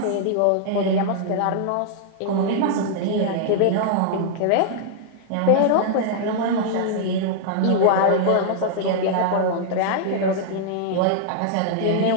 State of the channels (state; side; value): different; both; correlation -0.01